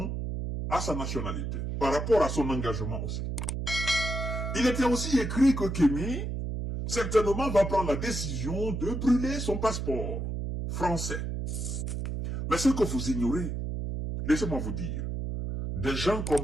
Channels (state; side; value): noise; right; hum, 3 dB below the sound